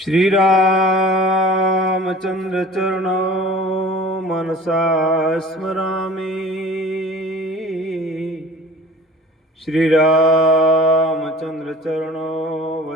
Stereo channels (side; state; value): both; normal; correlation 0.44